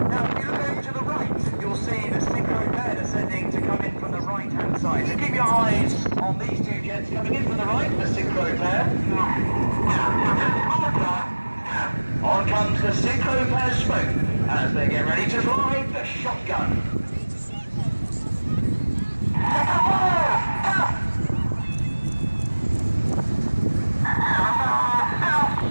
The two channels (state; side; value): inverted; both; correlation -1.00